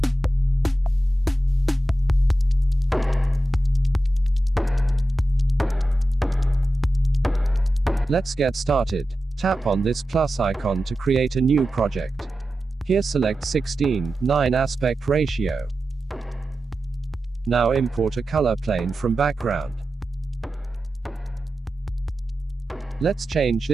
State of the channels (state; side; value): normal; both; correlation 0.92